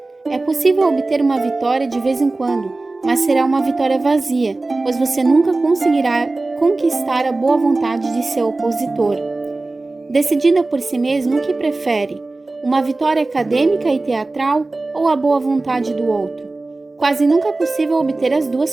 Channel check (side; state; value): left; quieter; 3.2 dB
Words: É possível obter uma vitória de vez em quando, mas será uma vitória vazia, pois você nunca conseguirá conquistar a boa vontade de seu opositor. Decidida por si mesmo, o que prefere? Uma vitória acadêmica e teatral ou a boa vontade do outro? Quase nunca é possível obter as